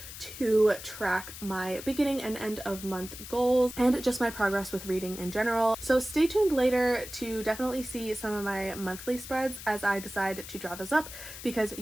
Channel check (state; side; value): noise; left; hiss, 12 dB below the sound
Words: to track my beginning and end of month goals and just my progress with reading in general. So stay tuned later to definitely see some of my monthly spreads as I decide to draw those up, because